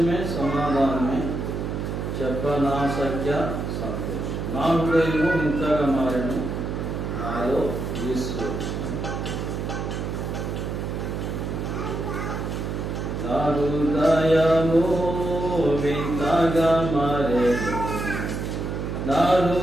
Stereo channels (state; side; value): noise; right; hum, 3 dB below the sound